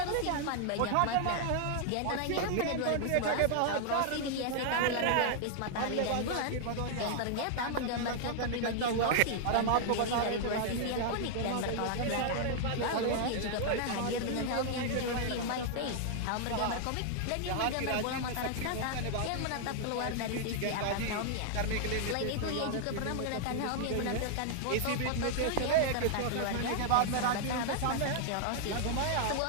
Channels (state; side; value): different; both; correlation -0.01